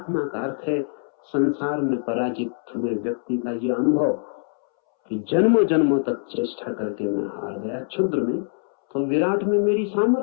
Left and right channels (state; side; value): silent; right; 63 dB below the other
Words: का अर्थ है संसार में पराजित हुए व्यक्ति का यह अनुभव कि जन्मों जन्मों तक चेष्टा करके मैं हार गया, क्षुद्र में तो विराट में मेरी